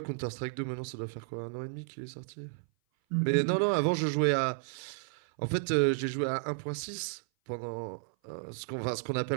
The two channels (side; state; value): left; silent; 56 dB below the other